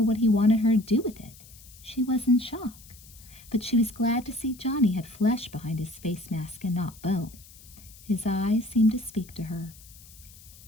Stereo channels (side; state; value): left; noise; hiss, 21 dB below the sound